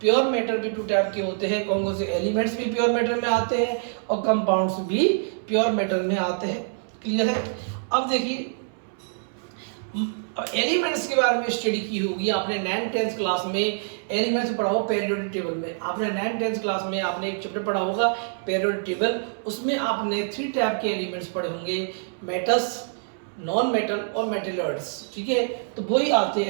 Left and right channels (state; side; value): silent; left; 61 dB below the other